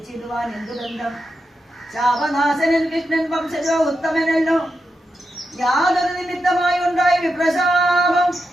എന്തു ബന്ധം? ശാപനാശനൻ കൃഷ്ണൻ വംശജോ ഉത്തമനല്ലോ. യാതൊരു നിമിത്തമായി ഉണ്ടായ വിപ്രശാപം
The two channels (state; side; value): normal; both; correlation 0.87